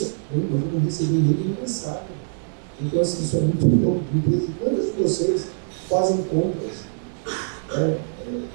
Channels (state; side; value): silent; left; 63 dB below the other